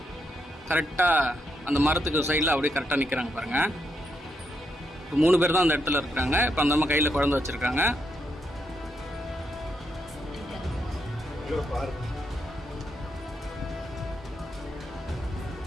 கரெக்டாக அந்த மரத்துக்கு சைடில் அப்படியே கரெக்டாக நிற்கிறாங்க பாருங்கள். இப்போ 3 பேர் தான் அந்த இடத்துல இருக்கிறாங்க. இப்போ அந்த அம்மா கையில் குழந்தை வச்சுருக்காங்க.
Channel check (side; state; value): both; normal; correlation 0.80